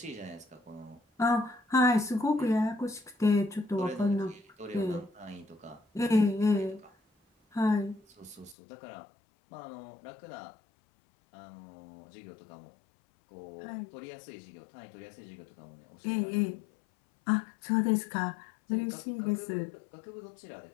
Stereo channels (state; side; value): drops out; right; at 8.6 s